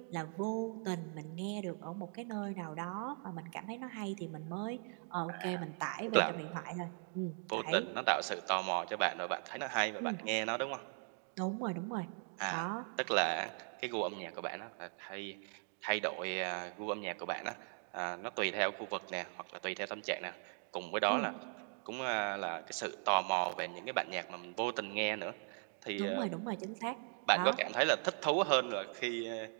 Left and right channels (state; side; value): silent; left; 52 dB below the other